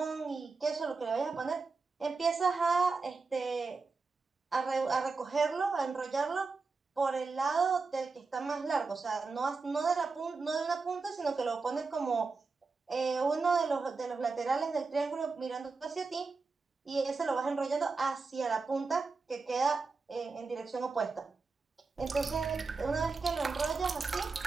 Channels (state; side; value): quieter; left; 4.3 dB